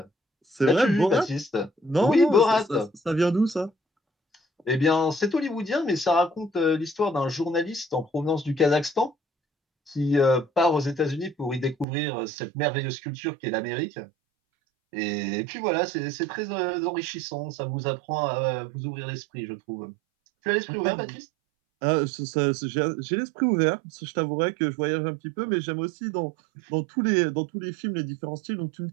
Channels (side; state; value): left; drops out; at 11.9 s